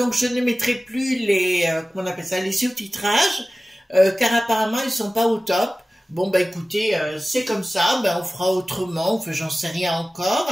je ne mettrai plus les, comment on appelle ça, les sous-titrages, car apparemment ils sont pas au top. Bon écoutez, c'est comme ça, on fera autrement, enfin j'en sais rien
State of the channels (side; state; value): both; normal; correlation 0.96